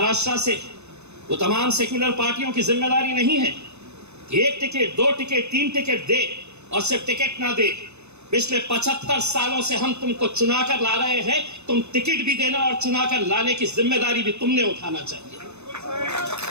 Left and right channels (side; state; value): left; late; 0.81 ms